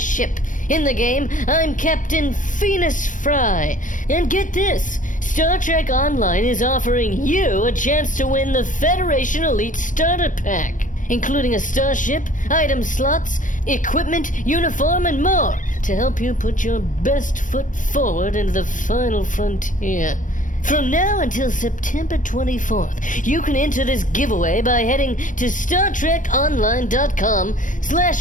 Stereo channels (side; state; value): right; late; 0.38 ms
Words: In the game, I'm Captain Phoenix Fry. And get this, Star Trek Online is offering you a chance to win the Federation Elite Starter Pack, including a starship, item slots, equipment, uniform, and more to help you put your best foot forward into the final frontier. From now until September 24th, you can enter this giveaway by heading to